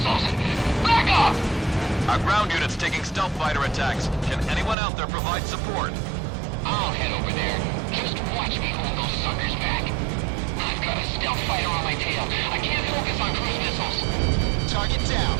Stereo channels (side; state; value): left; drops out; at 4.8 s